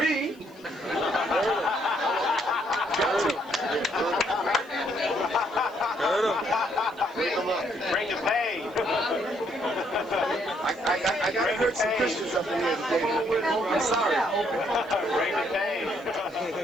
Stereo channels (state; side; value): noise; left; hiss, 30 dB below the sound